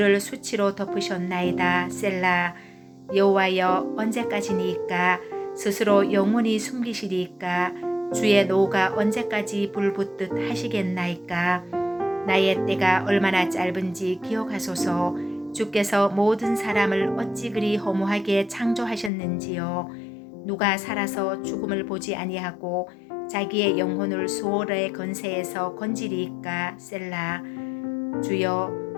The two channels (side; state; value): right; drops out; at 19.1 s